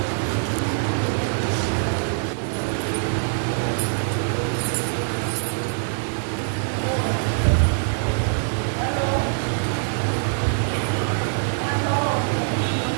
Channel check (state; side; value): silent; left; digital silence